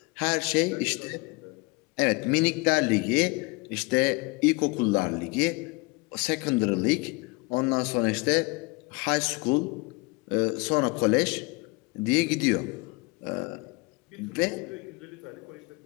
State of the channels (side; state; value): right; quieter; 26.7 dB